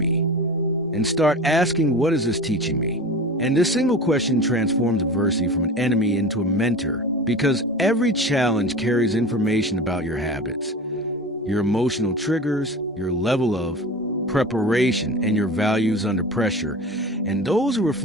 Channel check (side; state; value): both; normal; correlation 0.33